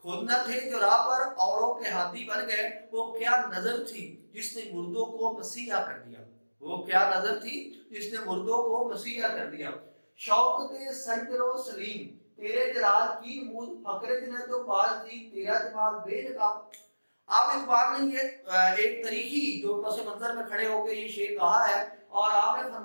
خود نہ تھے جو راہ پر اوروں کے ہاتھی بن گئے، وہ کیا نظر تھی جس نے مردوں کو مسیحا کر دیا، وہ کیا نظر تھی جس نے مردوں کو مسیحا کر دیا۔ شوق دے سنجر و سلیم تیرے جلال کی نمود فقر جنت و باز دی تیرا جمال بے نقاب۔ آپ اقبال نے یہ ایک تاریخی جو پس منظر میں کھڑے ہو کے یہ شعر کہا ہے، اور آپ نے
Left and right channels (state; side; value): inverted; both; correlation -1.00